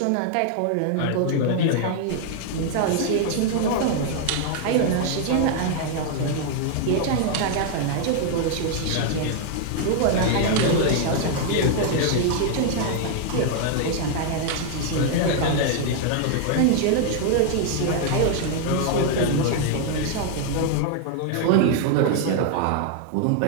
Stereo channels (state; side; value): different; both; correlation 0.00